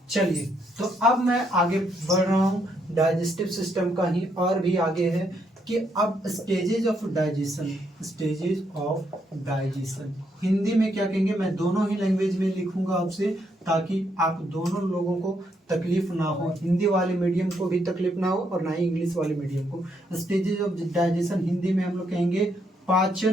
चलिए तो अब मैं आगे बढ़ रहा हूँ डाइजेस्टिव सिस्टम का ही, और भी आगे है कि अब stages of digestion, stages of digestion Hindi में क्या कहेंगे, मैं दोनों ही लैंग्वेज में लिखूंगा आपसे, ताकि आप दोनों लोगों को तकलीफ ना हो, हिंदी वाले मीडियम को भी तकलीफ ना हो और ना ही इंग्लिश वाले मीडियम को। स्टेजेज ऑफ डाइजेशन हिंदी में हम लोग कहेंगे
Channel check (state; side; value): normal; both; correlation 0.75